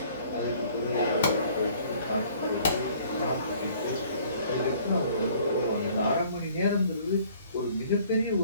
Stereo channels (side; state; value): both; inverted; correlation -0.56